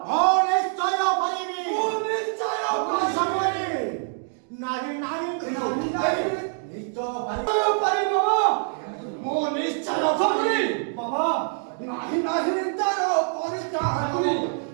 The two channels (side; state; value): left; silent; 58 dB below the other